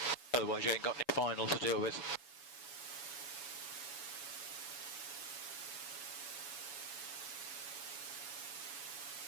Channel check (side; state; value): right; late; 7.1 ms